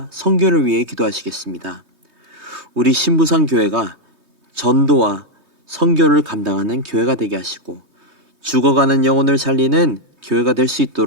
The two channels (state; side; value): late; left; 3.2 ms